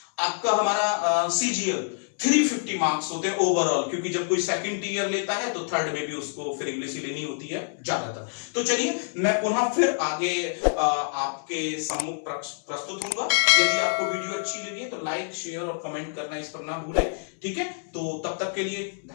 आपका हमारा CGL 350 मार्क्स होते हैं ओवरऑल, क्योंकि जब कोई सेकंड ईयर लेता है तो थर्ड में भी उसको फिर इंग्लिश ही लेनी होती है ज्यादातर। तो चलिए मैं पुनः फिर आगे आपके सम्मुख प्रस्तुत होऊंगा। यदि आपको वीडियो अच्छी लगी है तो लाइक, शेयर और कमेंट करना इस पर ना भूलें। ठीक है, तो तब तक के लिए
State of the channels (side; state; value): right; silent; 61 dB below the other